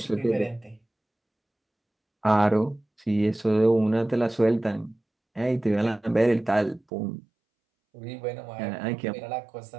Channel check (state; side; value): drops out; left; at 6.8 s